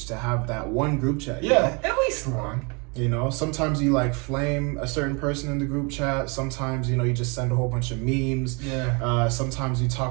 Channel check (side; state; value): left; quieter; 31.6 dB